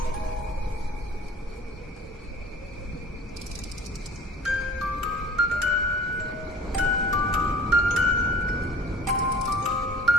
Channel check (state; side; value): normal; both; correlation 0.47